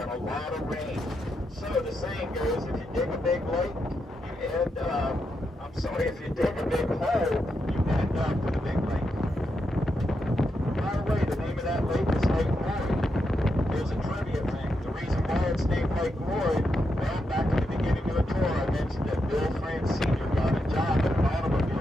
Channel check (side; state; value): both; normal; correlation 0.84